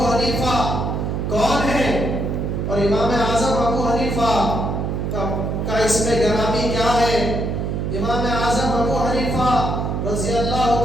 حنیفہ کون ہے اور امام اعظم ابو حنیفہ کا اسم گرامی کیا ہے۔ امام اعظم ابو حنیفہ رضی اللہ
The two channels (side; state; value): right; noise; hum, 1 dB below the sound